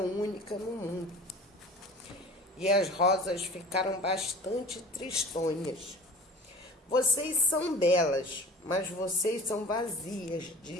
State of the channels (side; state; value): both; normal; correlation 0.41